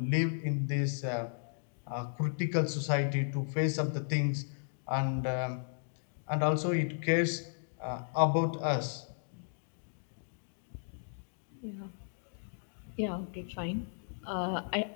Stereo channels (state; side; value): silent; right; digital silence